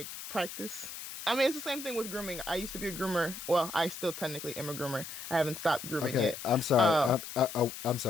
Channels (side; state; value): left; noise; hiss, 10 dB below the sound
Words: practice. I mean, it's the same thing with grooming. I used to be a groomer. Well, I still technically am a groomer. I haven't stopped grooming Okay, yet. I'm sorry. Um, I'm